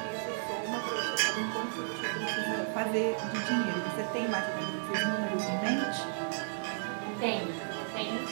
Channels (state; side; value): silent; left; digital silence